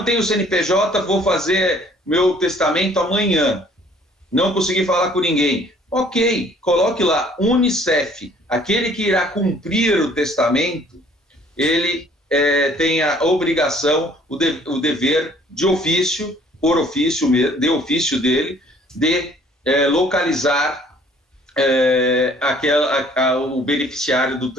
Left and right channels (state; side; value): normal; both; correlation 0.57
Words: tenho CNPJ, vou fazer meu testamento amanhã. Não consegui falar com ninguém. Ok, coloque lá Unicef. Aquele que irá cumprir o testamento, ele tem a obrigação, o dever de ofício, por ofício, de ofício dele, de localizar o beneficiário do